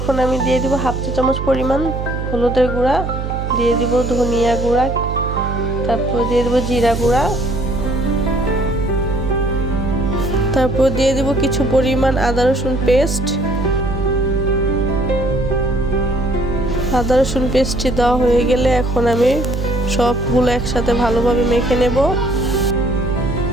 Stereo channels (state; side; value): noise; right; hum, 4 dB below the sound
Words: আমি দিয়ে দিব হাফ চা চামচ পরিমাণ হলুদের গুঁড়া, দিয়ে দিব ধনিয়া গুঁড়া, তারপর দিয়ে দিব জিরা গুঁড়া, তারপর দিয়ে দিব কিছু পরিমাণ আদা রসুন পেস্ট। আদা রসুন পেস্টটি দেওয়া হয়ে গেলে এখন আমি সবগুলো একসাথে ভালোভাবে মেখে নেব।